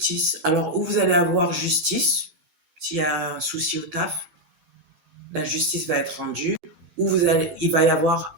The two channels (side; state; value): left; late; 12 ms